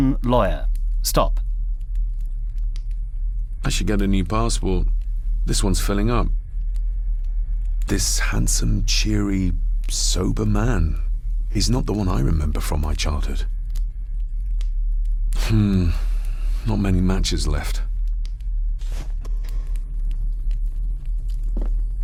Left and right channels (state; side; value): identical; both; correlation 1.00